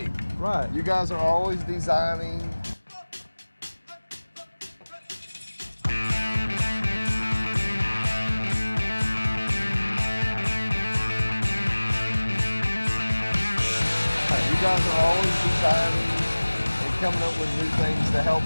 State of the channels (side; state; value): both; inverted; correlation -1.00